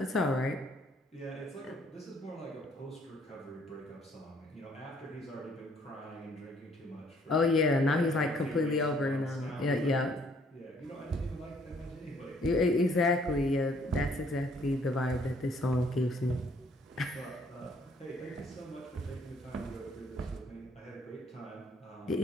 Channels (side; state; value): both; normal; correlation 0.63